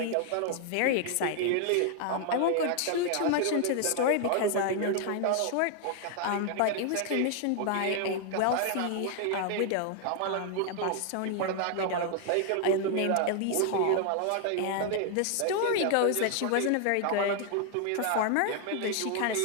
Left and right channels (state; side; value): different; both; correlation 0.00